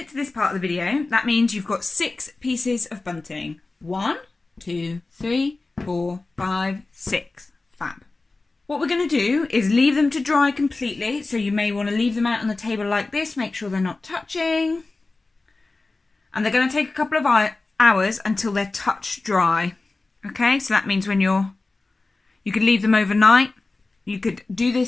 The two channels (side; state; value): right; quieter; 3.4 dB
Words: to this part of the video, that means you've got 6 pieces of bunting. 1, 2, 3, 4, 5, 6. Fab. What we're going to do is leave them to dry completely. So you may want to leave them out on the table like this. Make sure they're not touching. And they're going to take a couple of hours until they're touch dry. Okay, so that means when you could leave them overnight. You could do